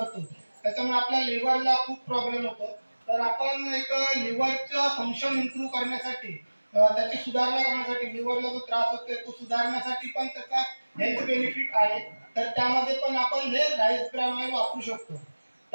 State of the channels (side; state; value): both; inverted; correlation -1.00